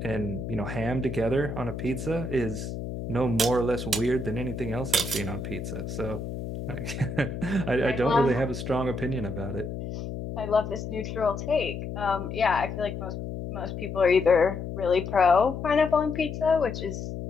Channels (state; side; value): noise; left; hum, 6 dB below the sound